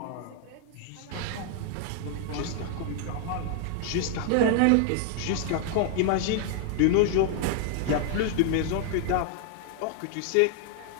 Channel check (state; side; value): different; both; correlation 0.00